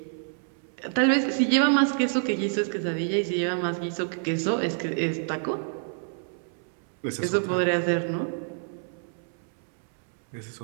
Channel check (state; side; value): silent; left; 60 dB below the other